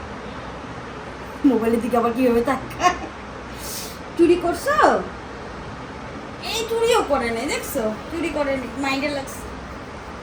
মোবাইলের দিকে আবার কিভাবে তাকায়? চুরি করছো? এই চুরিও করে নেই, দেখছো? চুরি করে নি, মাইন্ডে লাগছে।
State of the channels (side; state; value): both; identical; correlation 1.00